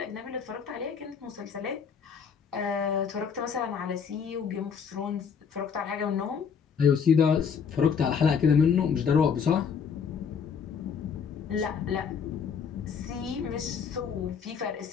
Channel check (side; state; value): right; quieter; 6.6 dB